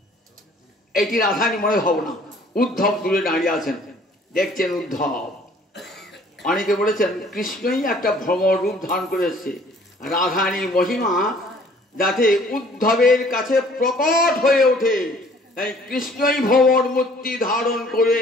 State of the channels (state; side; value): normal; both; correlation 0.56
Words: এটি রাধানী মনে ভাবনা। উদ্ধব দূরে দাঁড়িয়ে আছেন, দেখছেন উদ্ধব। অনেকে বলেছেন কৃষ্ণই একটা ভ্রমর রূপ ধারণ করে এসেছে। রাধানীর মহিমা যাতে উদ্ধবের কাছে প্রকট হয়ে ওঠে, তাই কৃষ্ণই ভ্রমর মূর্তি ধারণ করে